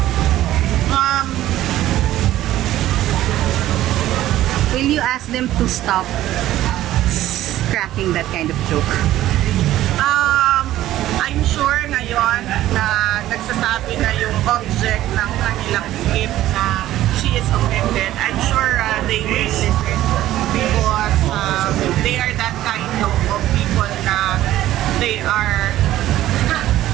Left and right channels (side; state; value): left; quieter; 14.1 dB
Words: Will you ask them to stop cracking that kind of joke? I'm sure ngayon na nagsasabi na yung object ng kanilang skip na she is offended. I'm sure they will listen because they are that kind of people na they are